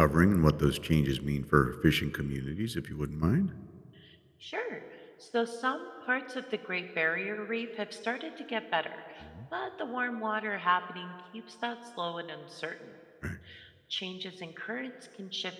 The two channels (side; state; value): both; identical; correlation 1.00